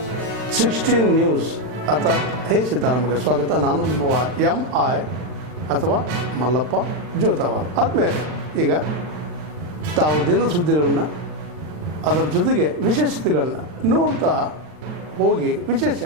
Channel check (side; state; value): left; late; 39 ms